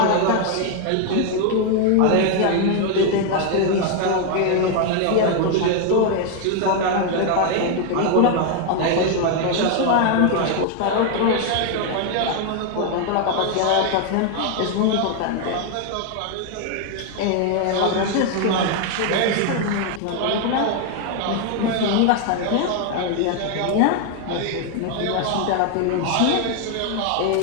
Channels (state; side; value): different; both; correlation 0.01